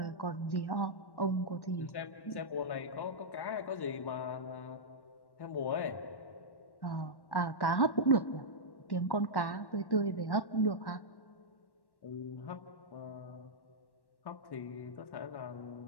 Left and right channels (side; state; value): right; late; 1.1 ms